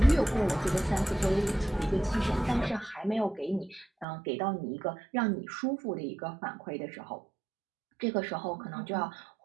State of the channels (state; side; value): drops out; left; at 4.0 s